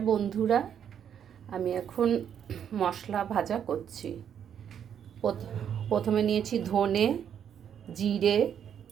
বন্ধুরা, আমি এখন মশলা ভাজা করছি। প্রথমে নিয়েছি ধনে, জিরে,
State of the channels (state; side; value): quieter; left; 8.7 dB